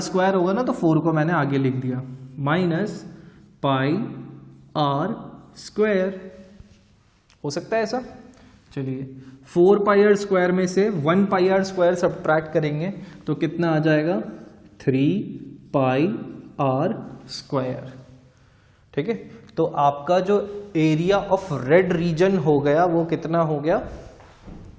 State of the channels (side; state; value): both; identical; correlation 1.00